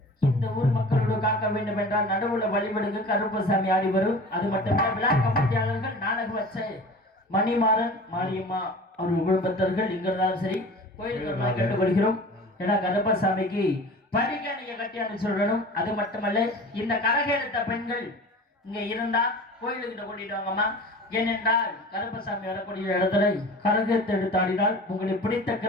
இந்த ஊர் மக்களோடு காக்க வேண்டும் என்றால் நடுவுல வழிபடுங்க கருப்பசாமி ஆடி வரும். அது மட்டுமல்ல விழா கமிட்டியாளர்கள் நாடகம் வச்ச மணிமாறன் மாரியம்மா அவர்கள் குடும்பத்தர்கள் இங்க இருந்தாலும் சரி கோயிலுக்கு கேட்டுக்கொள்கிறோம். ஏன்னா கருப்பசாமிக்கு படிக்க நீங்க கட்டியான்னு சொல்லணும். அது மட்டுமல்ல இந்த கரகெடுத்த பெண்கள் இங்க இருந்தா கோயிலுக்கிட்ட கூட்டிட்டு வாங்கம்மா. ஏனென்றால் கருப்பசாமி வரக்கூடிய இடத்துல கரகத்தை எடுத்து ஆடினால் உங்களுக்கு பிடித்த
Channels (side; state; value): both; normal; correlation 0.39